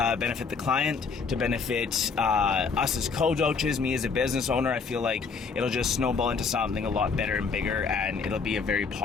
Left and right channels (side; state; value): right; quieter; 5.2 dB